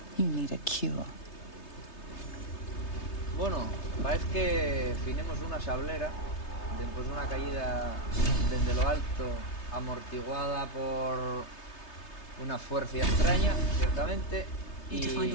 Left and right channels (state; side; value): late; right; 3.3 ms